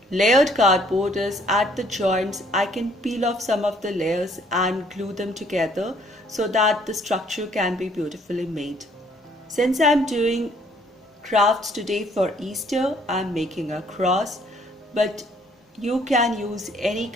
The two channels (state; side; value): normal; both; correlation 0.63